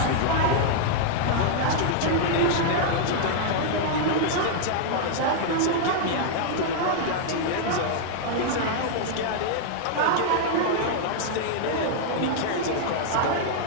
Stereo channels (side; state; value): both; different; correlation -0.01